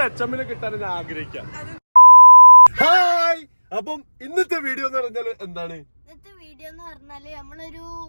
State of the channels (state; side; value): inverted; both; correlation -1.00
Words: അച്ചമ്മനെ കിട്ടാൻ ഞാൻ ആഗ്രഹിക്കാം. ഹായ്, അപ്പം ഇന്നത്തെ വീഡിയോ എന്ന് പറഞ്ഞാല് എന്താണ്? ഇന്നത്തെ വീഡിയോ എന്ന് പറഞ്ഞാല് നമ്മളൊരു